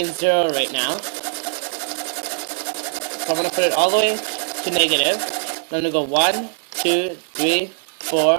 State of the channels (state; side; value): silent; left; 65 dB below the other